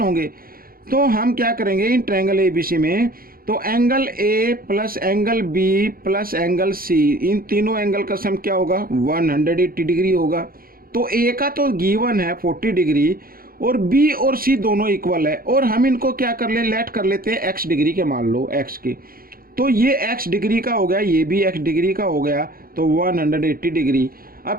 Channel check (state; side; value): late; left; 0.42 ms